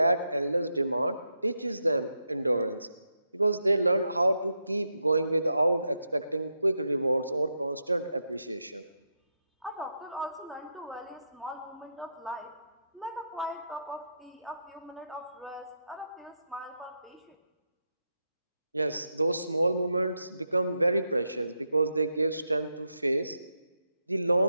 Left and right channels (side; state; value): both; inverted; correlation -0.84